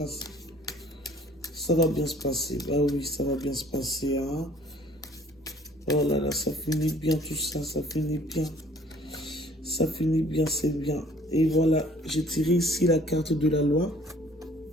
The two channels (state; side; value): normal; both; correlation 0.55